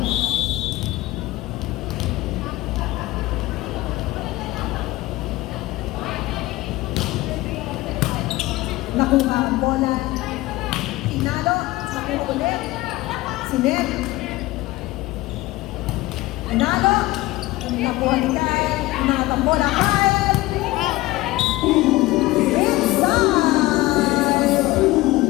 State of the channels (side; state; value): right; quieter; 18.7 dB